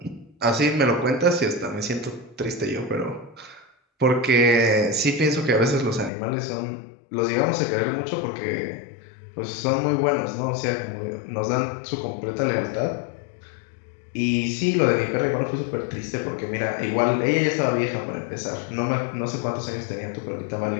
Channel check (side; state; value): right; drops out; at 6.1 s